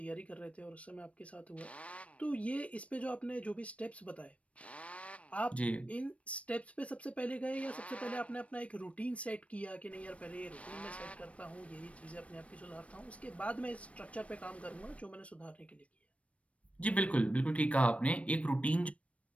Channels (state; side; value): late; right; 0.064 ms